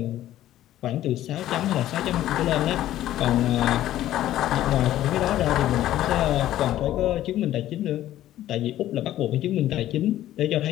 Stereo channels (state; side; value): quieter; right; 13.3 dB